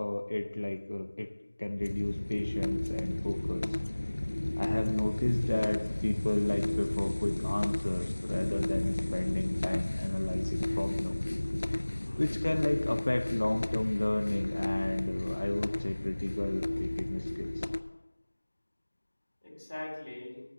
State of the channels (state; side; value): inverted; both; correlation -1.00